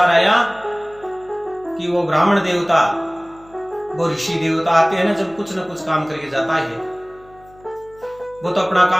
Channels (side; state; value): left; noise; hum, 27 dB below the sound